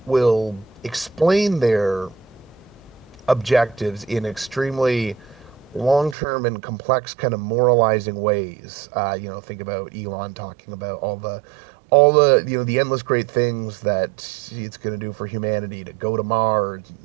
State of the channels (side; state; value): left; drops out; at 6.2 s